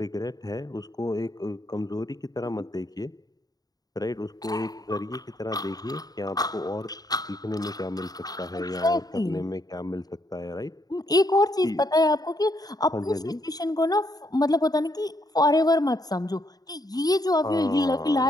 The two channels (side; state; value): right; late; 0.18 ms